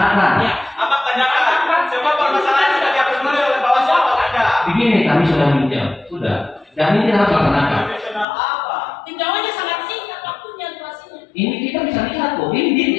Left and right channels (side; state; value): right; drops out; at 8.2 s